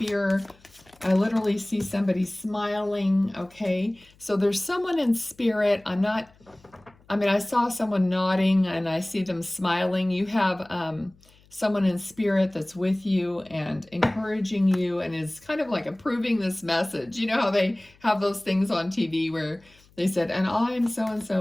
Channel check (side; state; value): left; noise; hum, 30 dB below the sound